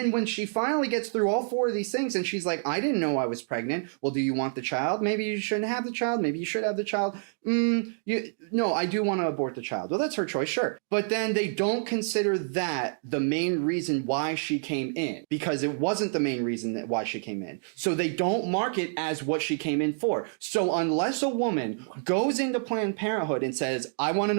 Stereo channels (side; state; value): left; silent; digital silence